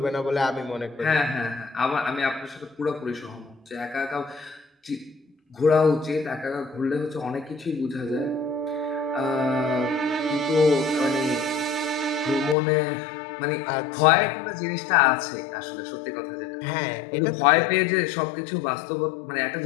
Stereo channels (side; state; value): right; drops out; at 12.6 s